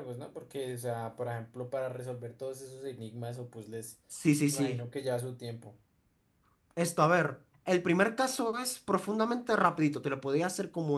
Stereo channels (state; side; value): identical; both; correlation 1.00